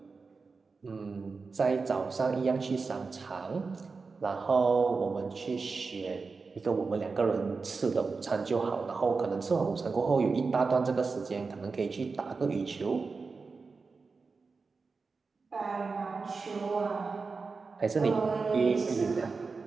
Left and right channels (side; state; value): left; quieter; 4.5 dB